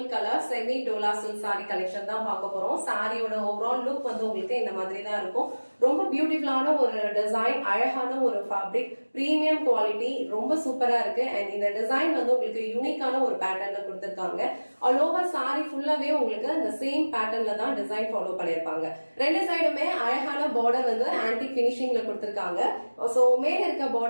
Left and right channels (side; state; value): both; inverted; correlation -1.00